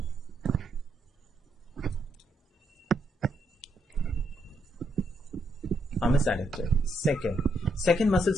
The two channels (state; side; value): normal; both; correlation 0.77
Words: Arm is adducted. Second muscle